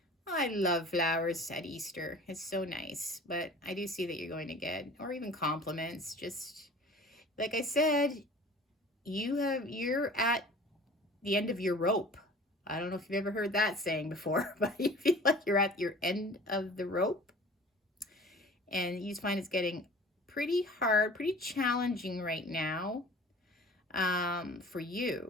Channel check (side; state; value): both; normal; correlation 0.44